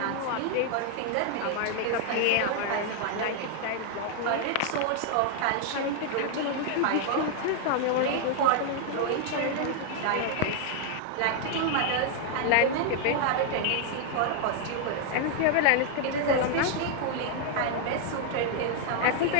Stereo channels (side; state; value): both; different; correlation 0.00